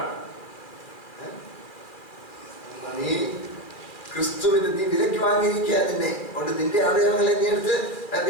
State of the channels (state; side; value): late; right; 2.4 ms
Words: നീ ക്രിസ്തുവിന് നീ വിലയ്ക്ക് വാങ്ങിയിരിക്കുക. നിന്നെ കൊണ്ട് നിന്റെ അവയവങ്ങളെ നീ എടുത്ത്